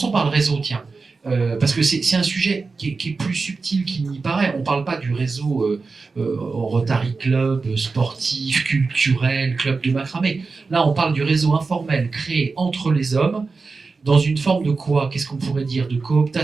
par le réseau, tiens. Parce que c'est un sujet qui est plus subtil qu'il n'y paraît. On ne parle pas du réseau Rotary Club, sportif, culturel, club de macramé. Là, on parle du réseau informel créé entre les hommes dans une forme de quoi? Qu'est-ce qu'on pourrait dire? De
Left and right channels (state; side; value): quieter; left; 4.3 dB